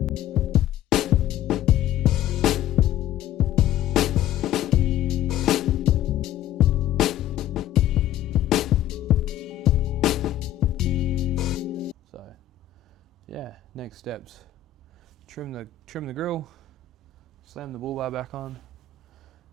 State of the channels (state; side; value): quieter; right; 11.6 dB